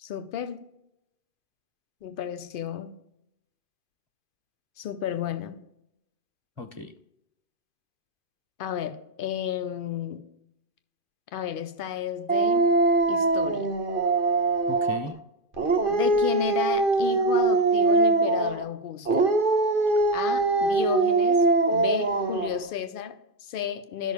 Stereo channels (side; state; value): right; late; 2.5 ms